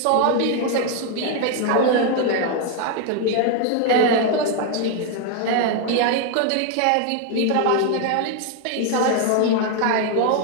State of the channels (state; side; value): different; both; correlation 0.01